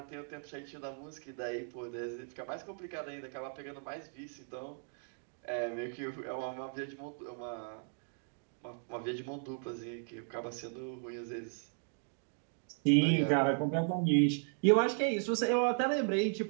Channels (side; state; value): left; silent; 54 dB below the other